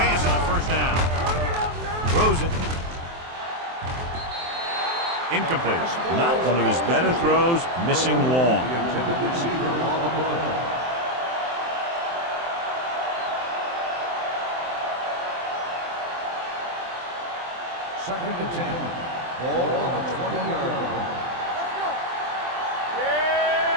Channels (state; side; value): late; left; 23 ms